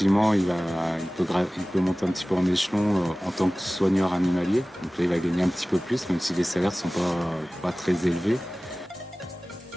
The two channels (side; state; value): both; normal; correlation 0.98